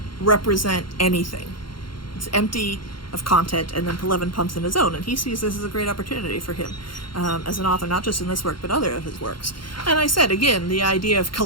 represent anything. It's empty of content, and then Pelevin pumps in his own, and he sees this as a great opportunity for him as an author, not just in this work, but other of his works. And I said, again, the idea of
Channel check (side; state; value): right; late; 0.73 ms